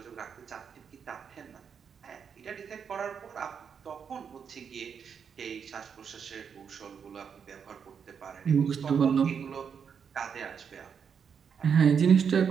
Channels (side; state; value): left; quieter; 6.9 dB